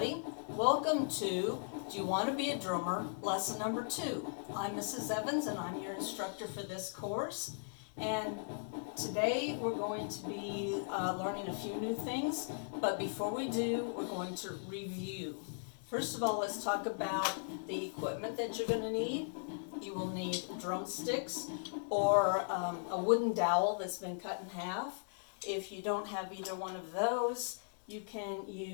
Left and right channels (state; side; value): silent; right; digital silence